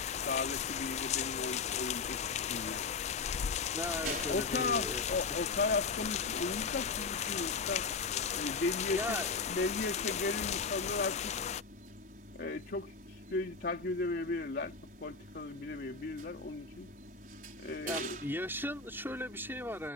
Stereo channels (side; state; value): right; quieter; 4.5 dB